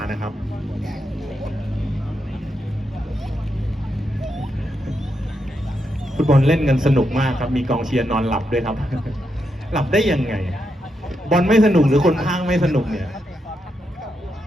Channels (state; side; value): normal; both; correlation 0.83